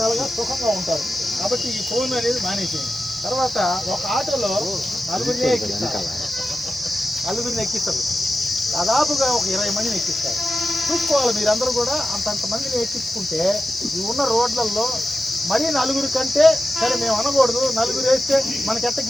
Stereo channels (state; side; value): normal; both; correlation 0.91